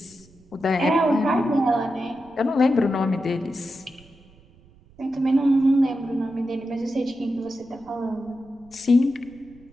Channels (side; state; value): right; noise; rumble, 27 dB below the sound